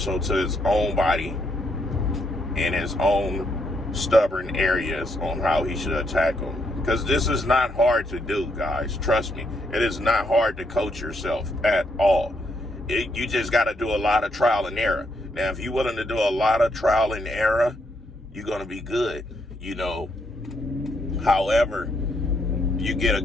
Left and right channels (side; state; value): both; normal; correlation 0.76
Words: to his own body and his own stubborn areas on how he should attack them. Because this is not hard to do, guys. Trust me. It is not hard to coach yourself at all. You just got to do a lot of trial and error. Now, if you're willing to do a lot of trial and error, you're going to be good, you know. However, you get a